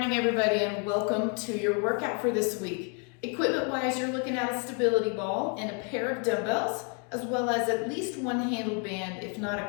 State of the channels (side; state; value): right; quieter; 36.4 dB